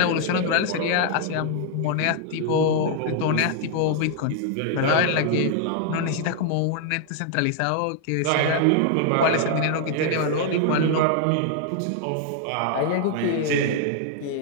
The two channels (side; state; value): both; different; correlation 0.00